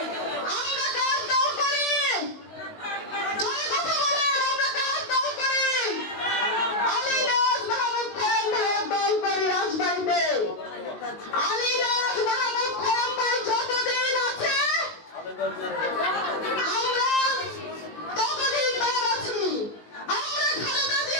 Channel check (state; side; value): late; right; 19 ms